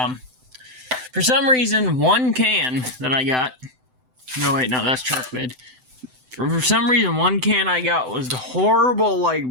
for some reason, 1 can that I got... No, wait, no, that's truck bed. For some reason, 1 can I got was the horrible, like,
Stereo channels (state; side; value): late; left; 7.9 ms